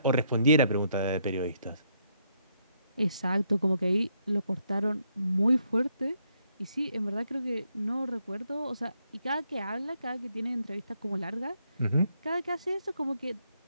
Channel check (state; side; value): inverted; both; correlation -0.74